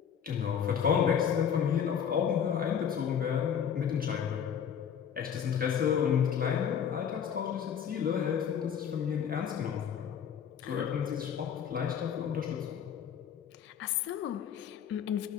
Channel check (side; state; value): right; quieter; 8.1 dB